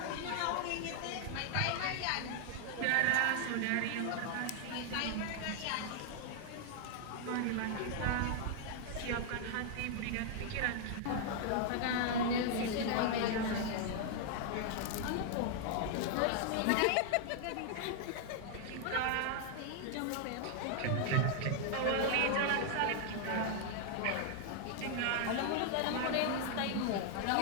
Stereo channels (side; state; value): both; different; correlation 0.00